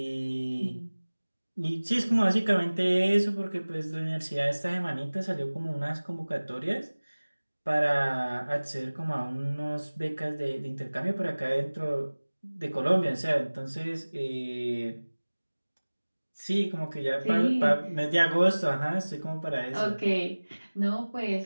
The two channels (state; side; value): inverted; both; correlation -1.00